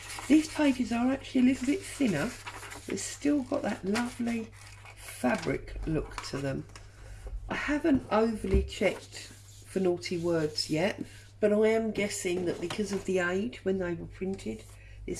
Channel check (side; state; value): both; identical; correlation 1.00